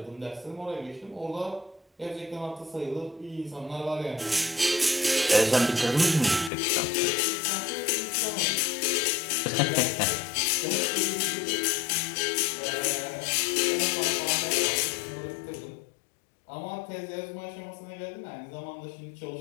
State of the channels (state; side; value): drops out; right; at 6.5 s